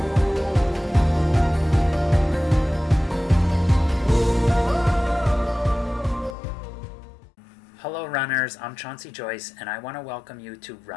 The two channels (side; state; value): right; drops out; at 6.4 s